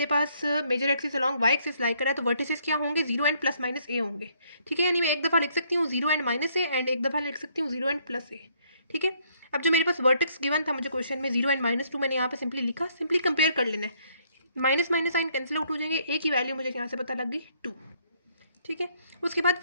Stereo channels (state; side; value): inverted; both; correlation -0.67